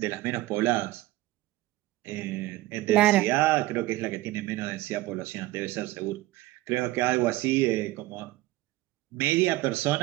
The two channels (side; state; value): left; quieter; 17.6 dB